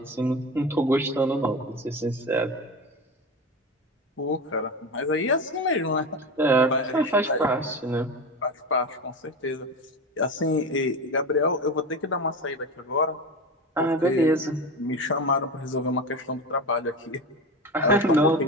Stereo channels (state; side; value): normal; both; correlation 0.25